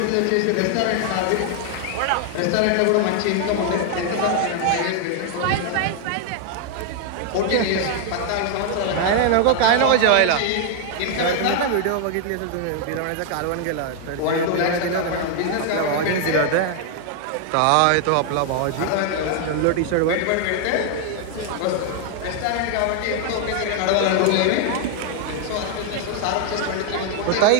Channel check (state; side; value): different; both; correlation 0.00